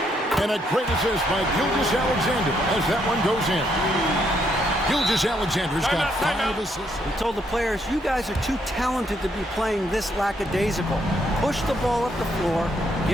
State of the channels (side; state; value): both; normal; correlation 0.73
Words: And a great assist by Gilgeous-Alexander as that one goes in. Gilgeous-Alexander's got 5 assists. He told the players, you guys are too talented to be playing this lackadaisical. Push the ball up the floor,